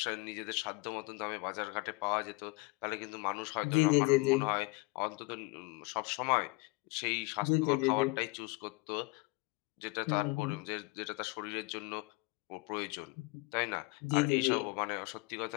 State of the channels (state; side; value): quieter; right; 25.3 dB